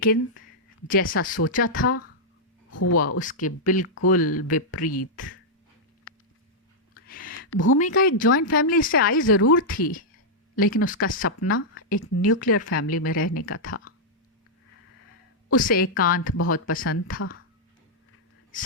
जैसा सोचा था हुआ उसके बिल्कुल विपरीत। भूमिका एक जॉइंट फैमिली से आई ज़रूर थी, लेकिन उसका सपना एक न्यूक्लियर फैमिली में रहने का था। उसे एकांत बहुत पसंद था।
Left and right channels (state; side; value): normal; both; correlation -0.07